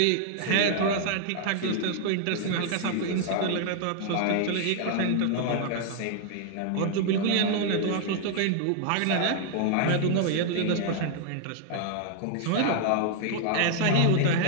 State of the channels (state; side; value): different; both; correlation 0.00